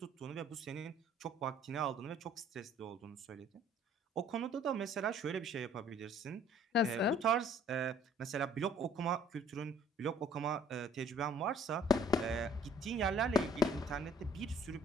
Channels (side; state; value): both; normal; correlation 0.57